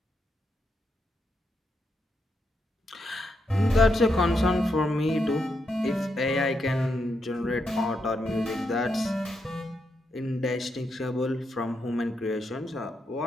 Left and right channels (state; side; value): normal; both; correlation 0.82